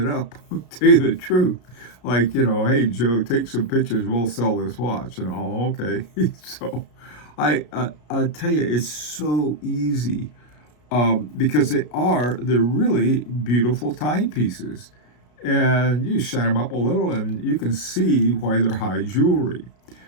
up, to tell you the truth. Like, hey, Joe, take some pictures, we'll sell this watch. And, oh, okay. So I tell you, it's so easy. Because they're really beautiful timepieces. And you shine them up a little and you can see why they're high jewelry.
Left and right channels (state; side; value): late; right; 33 ms